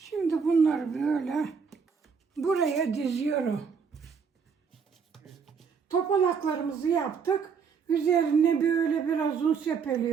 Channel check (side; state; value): left; quieter; 6.1 dB